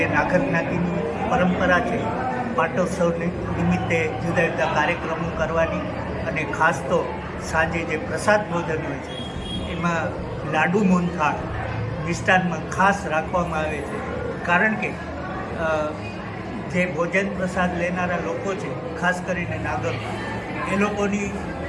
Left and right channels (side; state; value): both; identical; correlation 1.00